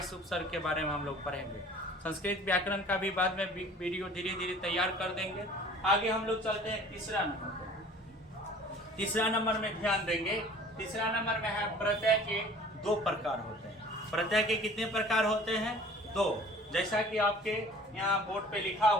उपसर्ग के बारे में हम लोग पढ़ेंगे। संस्कृत व्याकरण का भी बाद में वीडियो धीरे धीरे तैयार कर देंगे। आगे हम लोग चलते हैं तीसरा नंबर। तीसरा नंबर में ध्यान देंगे, तीसरा नंबर में है प्रत्यय के 2 प्रकार होते हैं। प्रत्यय के कितने प्रकार होते हैं? 2। जैसा कि आपके यहाँ बोर्ड पे लिखा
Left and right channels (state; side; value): normal; both; correlation 0.48